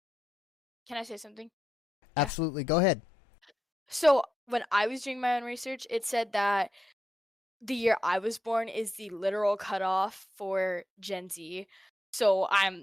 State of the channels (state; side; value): normal; both; correlation 0.86